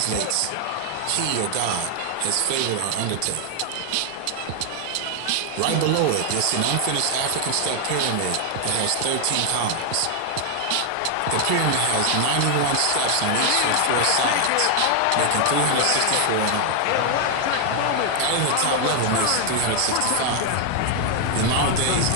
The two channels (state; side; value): different; both; correlation 0.00